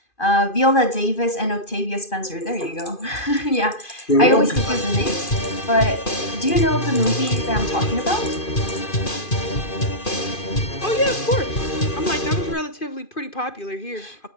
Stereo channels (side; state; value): right; late; 2.5 ms